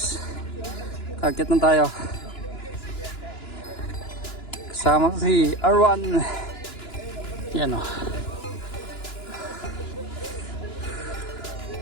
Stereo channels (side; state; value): right; late; 2.9 ms